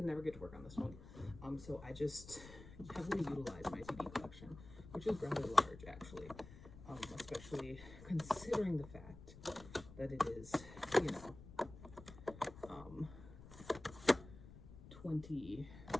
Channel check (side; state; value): left; noise; rumble, 16 dB below the sound